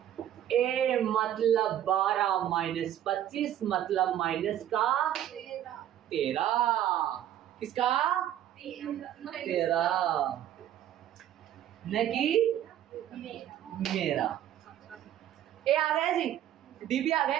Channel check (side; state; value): left; quieter; 11.4 dB